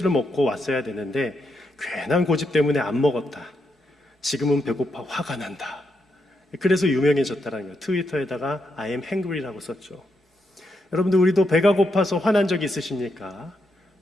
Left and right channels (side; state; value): both; normal; correlation 0.82